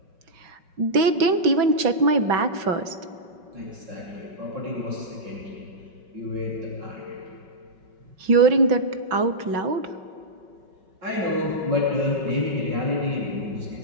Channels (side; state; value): left; late; 5.4 ms